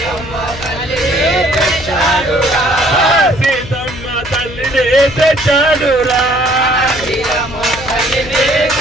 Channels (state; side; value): noise; left; hum, 14 dB below the sound